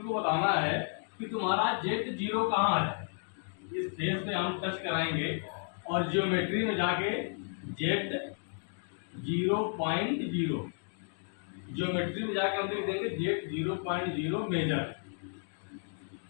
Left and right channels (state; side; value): silent; right; 56 dB below the other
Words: बताना है कि तुम्हारा जेड 0 कहाँ है। इस फेस पे हम टच कराएंगे और ज्योमेट्री में जाके जेड 0.0, ज्योमेट्री में जाके हम लिख देंगे जेड 0.0 मेजर।